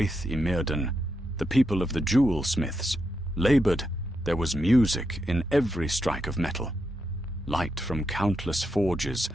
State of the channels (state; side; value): normal; both; correlation 0.83